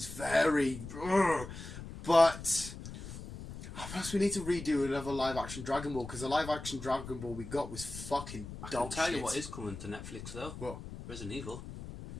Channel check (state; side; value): noise; left; rumble, 11 dB below the sound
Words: very. But perhaps we need to redo another live-action Dragon Ball because the live-action Dragon Ball we got was fucking dog shit. I can tell you what is coming to Netflix though. What? Resident Evil.